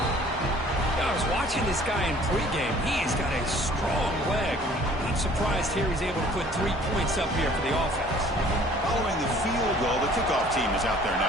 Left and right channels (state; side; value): normal; both; correlation 0.53